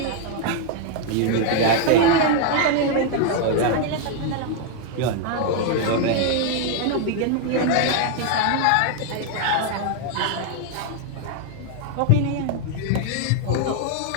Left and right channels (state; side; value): different; both; correlation 0.00